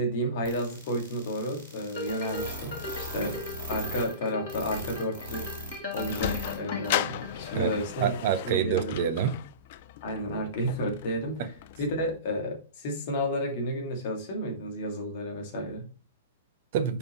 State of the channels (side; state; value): both; inverted; correlation -0.32